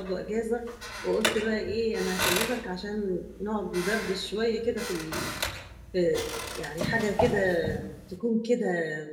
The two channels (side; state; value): both; identical; correlation 1.00